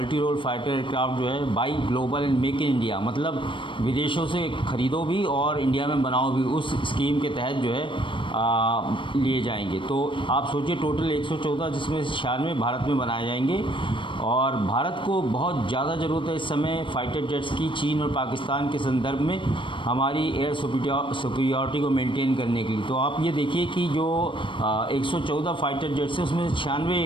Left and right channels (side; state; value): right; late; 0.24 ms